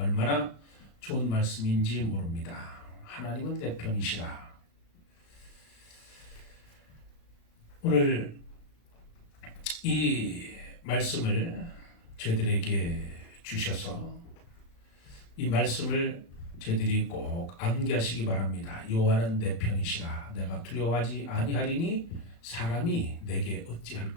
좋은 말씀인지 모릅니다. 하나님은 내 편이시라. 오늘 이 말씀을 저희들에게 주셔서 이 말씀을 저희들이 꼭 암기하시기 바랍니다. 여호와는 내 편이시라. 내가 두려워하지 아니하리니 사람이 내게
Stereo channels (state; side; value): late; right; 35 ms